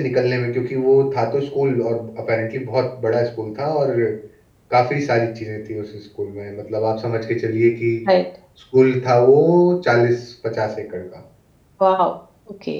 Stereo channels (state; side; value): identical; both; correlation 1.00